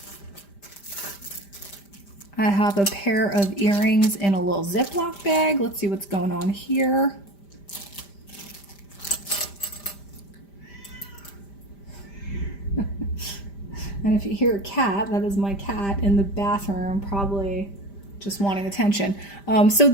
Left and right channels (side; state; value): right; late; 5.0 ms